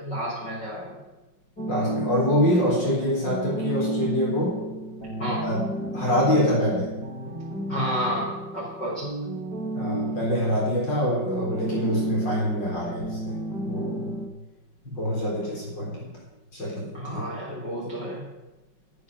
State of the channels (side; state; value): right; late; 5.4 ms